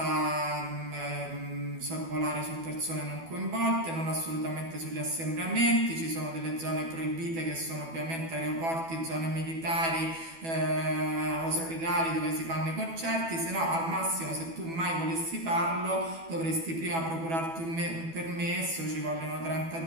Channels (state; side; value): late; left; 12 ms